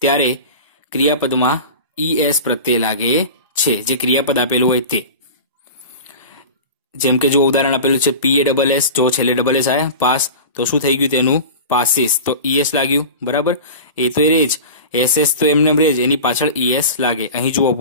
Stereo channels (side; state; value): both; inverted; correlation -0.33